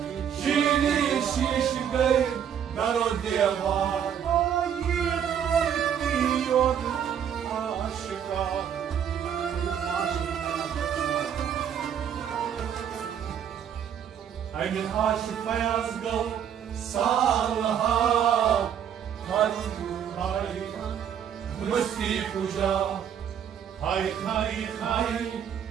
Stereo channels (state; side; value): quieter; left; 8.8 dB